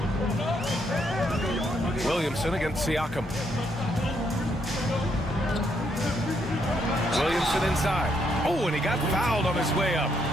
Williamson against Siakam. Williamson inside. Oh, and he got fouled on his way up.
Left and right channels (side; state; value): both; normal; correlation 0.75